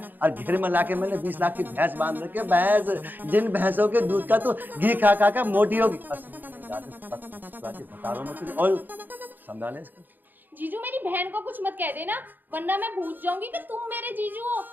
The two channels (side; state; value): left; late; 0.088 ms